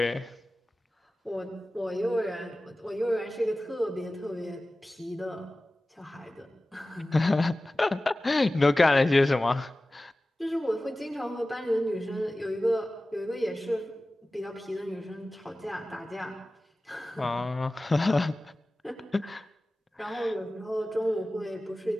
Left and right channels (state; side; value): normal; both; correlation 0.96